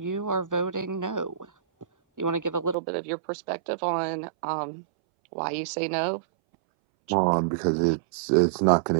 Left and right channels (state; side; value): drops out; left; at 2.8 s